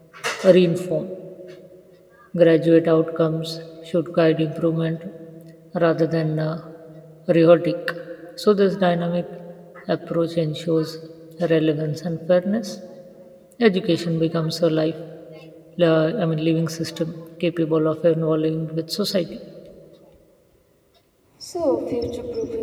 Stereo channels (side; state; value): both; identical; correlation 1.00